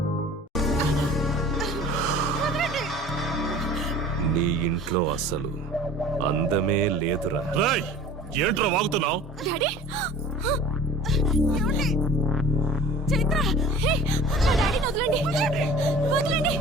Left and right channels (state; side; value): normal; both; correlation 0.44